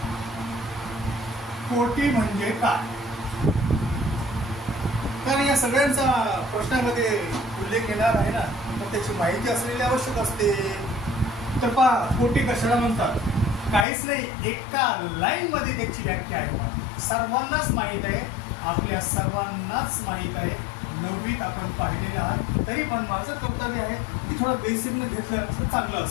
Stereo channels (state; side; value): drops out; right; at 13.9 s